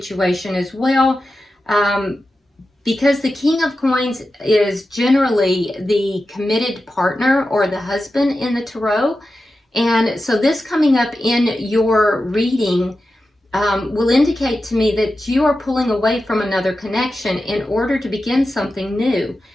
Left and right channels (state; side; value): normal; both; correlation 0.92